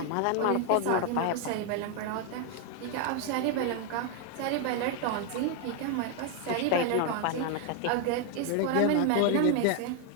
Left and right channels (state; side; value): different; both; correlation 0.01